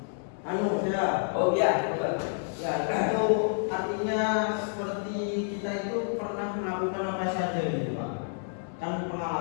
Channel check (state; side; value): silent; right; digital silence